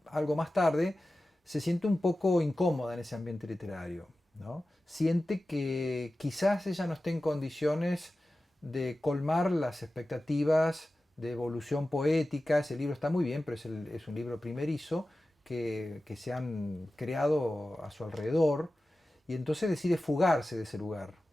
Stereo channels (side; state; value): both; normal; correlation 0.95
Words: algo más tarde, se siente un poco incómoda en ese ambiente literario, ¿no? Siente que quizás ella no esté en condiciones de colmar las expectativas de evolución poética. Ese libro está muy bien, pero es un libro primerizo que se han creado a su alrededor, y entonces decide fugarse de ese lugar.